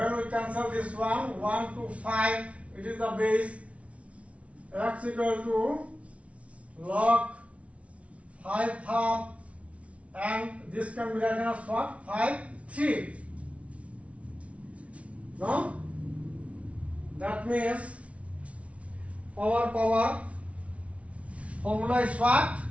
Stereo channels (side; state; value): left; late; 0.063 ms